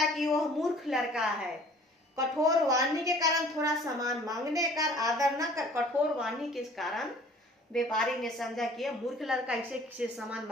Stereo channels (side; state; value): both; normal; correlation 0.52